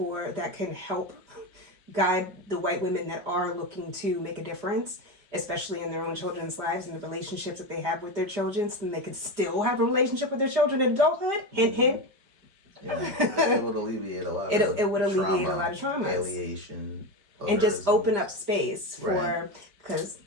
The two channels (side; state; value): left; late; 5.0 ms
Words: that can help guide the white women that are looking to make a difference, especially in their own children's lives and the relationships that they have with their children, so then they can still have a relationship with their children in adulthood, hint, hint. Yeah, it would alleviate a lot it would alleviate a lot of traumas. Alienation. And just open up space for, because